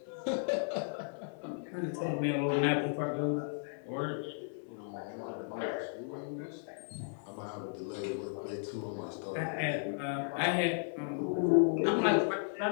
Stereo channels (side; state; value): right; silent; 55 dB below the other